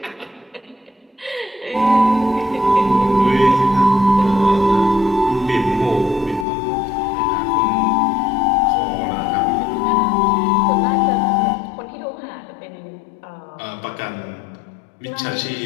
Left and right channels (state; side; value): drops out; right; at 6.5 s